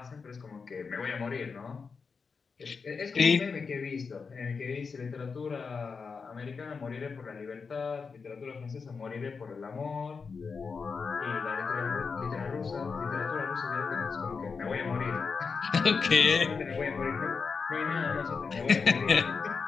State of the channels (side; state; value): right; quieter; 5.2 dB